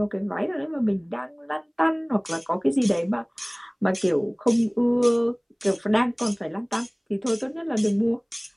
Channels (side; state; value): both; identical; correlation 1.00